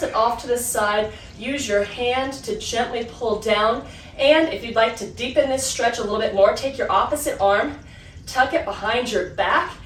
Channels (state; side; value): identical; both; correlation 1.00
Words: it off to the side. Use your hand to gently pull down. And if you'd like to deepen this stretch a little bit more, take your opposite arm, tuck it behind your back,